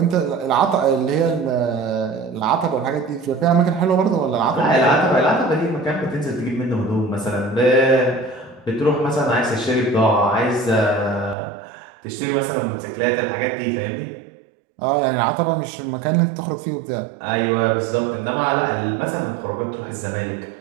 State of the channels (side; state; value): left; drops out; at 11.4 s